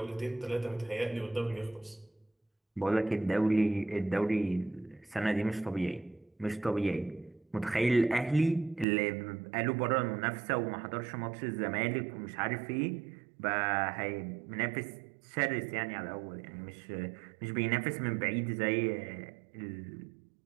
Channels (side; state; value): left; drops out; at 8.8 s